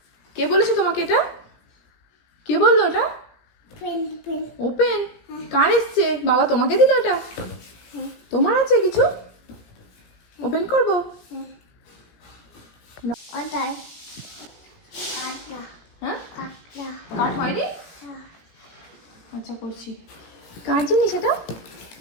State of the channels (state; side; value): late; right; 17 ms